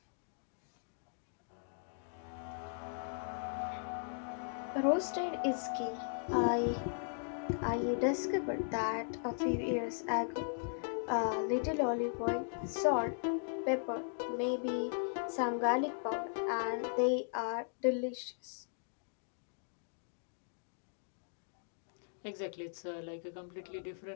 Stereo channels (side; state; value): right; silent; digital silence